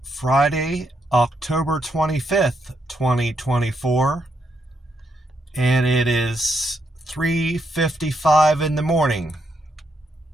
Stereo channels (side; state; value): both; normal; correlation 0.79